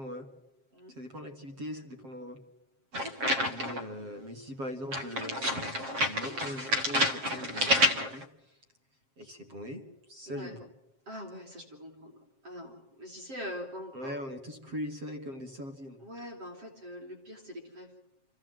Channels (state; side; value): late; left; 7.5 ms